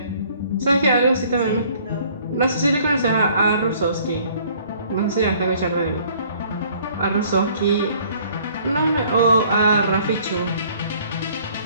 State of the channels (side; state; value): both; inverted; correlation -0.58